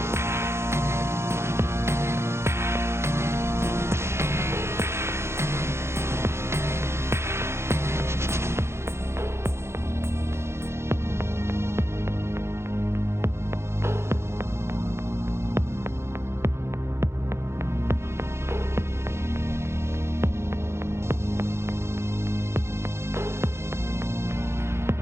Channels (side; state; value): left; late; 0.13 ms